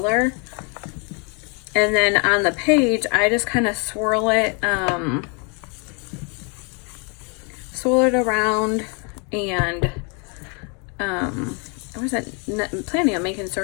And then on the page, I just kind of swirl it around, and I wasn't planning on making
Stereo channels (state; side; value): quieter; right; 35.3 dB